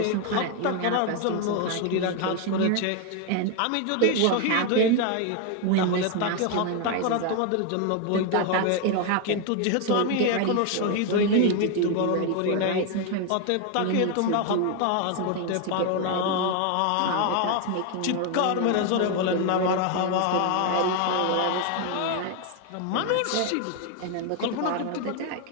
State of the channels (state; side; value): different; both; correlation 0.01